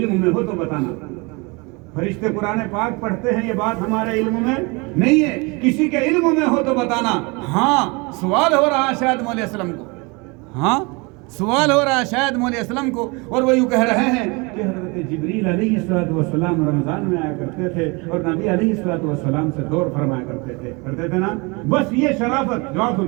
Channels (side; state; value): left; quieter; 28.1 dB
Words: में हो तो बताना। फरिश्ते कुरान पाक पढ़ते हैं, ये बात हमारे इल्म में नहीं है, किसी के इल्म में हो तो बताना। हाँ, सवाल हो रहा है शायद मौलवी असलम को, हाँ सवाल हो रहा है शायद मौलवी असलम को, और वो यूँ कह रहे हैं कि हज़रत जिब्रील अलैहिस्सलाम रमज़ान में आया करते थे और नबी अलैहिस्सलाम से दौर फरमाया करते थे ना। बस ये शराफत, जवाब